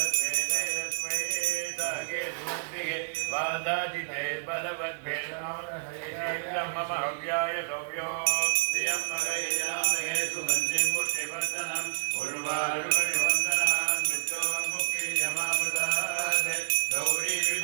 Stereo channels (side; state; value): left; silent; 58 dB below the other